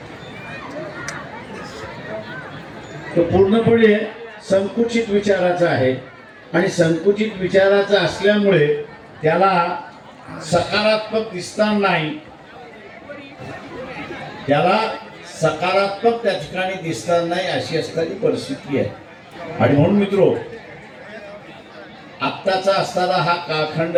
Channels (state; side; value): identical; both; correlation 1.00